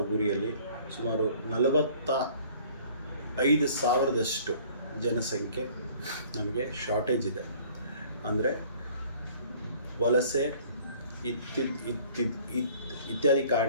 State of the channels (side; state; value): both; inverted; correlation -0.53